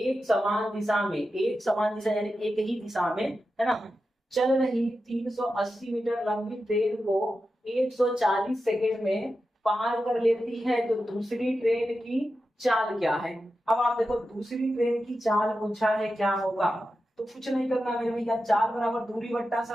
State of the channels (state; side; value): normal; both; correlation 0.91